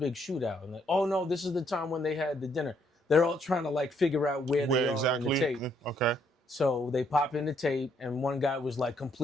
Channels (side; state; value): both; normal; correlation 0.71